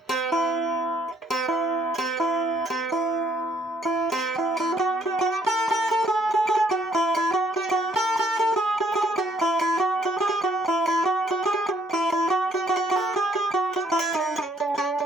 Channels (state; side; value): normal; both; correlation 0.66